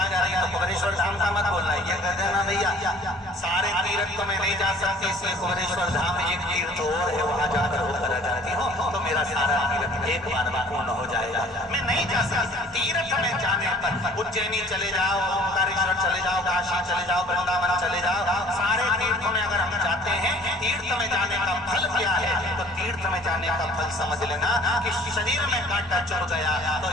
जा रही है तो कबरेश्वर धाम का मत बोलना, ये कह देना भैया सारे तीर्थ तो मैं नहीं जा सकती, इसलिए कबरेश्वर धाम एक तीर्थ और है, वहां जाकर होकर आ जाती हूँ तो मेरा सारा तीर्थ एक बार में पूर्ण हो जाएगा। मैं नहीं जा सकती तीर्थ में जाने पर, उज्जैनी चले जाओ, ओंकारेश्वर चले जाओ, काशी चले जाओ, वृंदावन चले जाओ, सारे तीर्थों में अगर हम जाते हैं तीर्थ में जाने का फल क्या है, तो तीर्थ में जाने का फल समझ लेना कि शरीर में कांटा चुभ गया तो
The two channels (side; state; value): both; normal; correlation 0.51